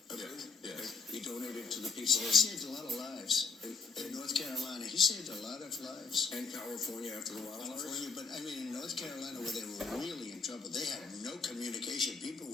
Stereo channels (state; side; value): quieter; right; 5.1 dB